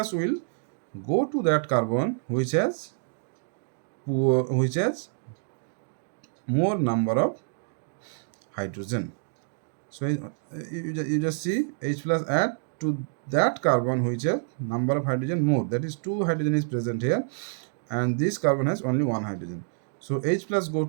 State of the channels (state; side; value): silent; left; digital silence